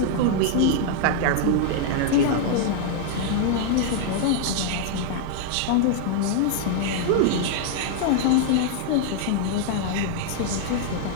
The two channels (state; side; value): different; both; correlation -0.01